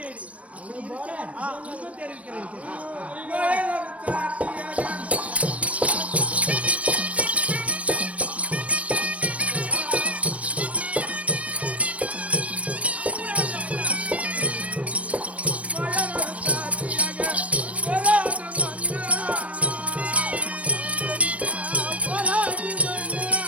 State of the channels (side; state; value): left; late; 0.065 ms